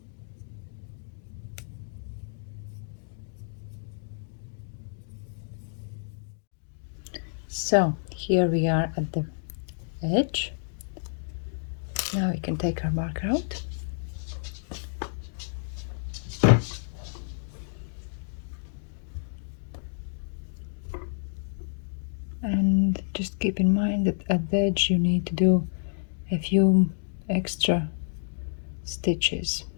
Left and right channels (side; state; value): right; silent; digital silence